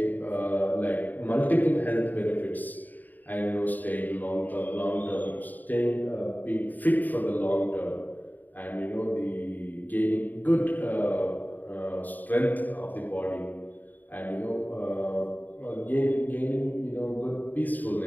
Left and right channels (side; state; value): right; late; 0.086 ms